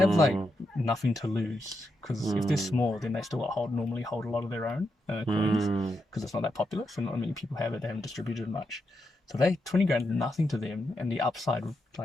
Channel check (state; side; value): normal; both; correlation 0.84